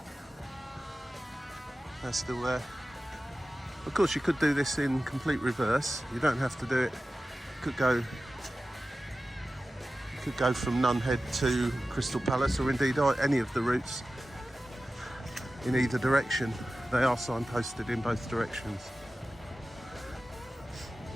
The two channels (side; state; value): both; normal; correlation 0.95